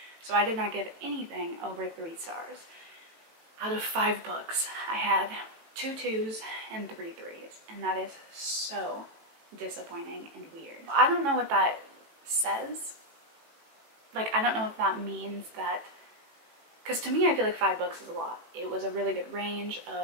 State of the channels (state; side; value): late; left; 18 ms